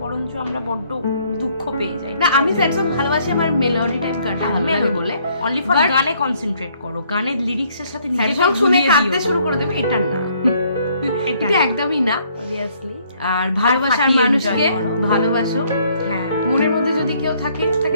বরঞ্চ আমরা বড্ড দুঃখ পেয়ে যাই। না আমি স্যাড সং ভালোবাসি, আমার মেলোডি টাইপ গানটা ভালো লাগে বলে অনলি ফর গানে কনসেন্ট্রেট করো, গানের লিরিক্সের সাথে স্যাড সং শুনে কাঁদতে শুরু করে দেবে, এটা না, এটা একদমই না। অবভিয়াসলি আর ভালোবাসার মানুষকে ভালোবাসো, হ্যাঁ, মনের মধ্যে যদি কেউ থাকে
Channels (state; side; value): inverted; both; correlation -0.65